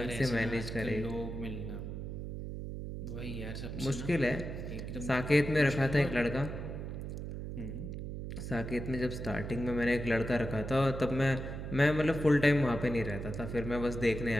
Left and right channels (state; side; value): noise; right; hum, 6 dB below the sound